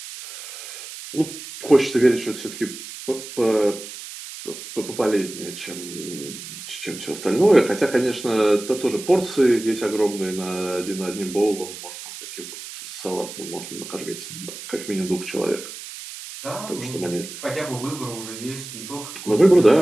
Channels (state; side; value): noise; right; hiss, 12 dB below the sound